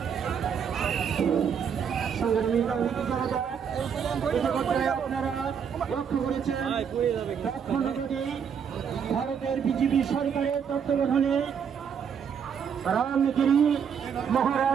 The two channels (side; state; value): left; quieter; 7.3 dB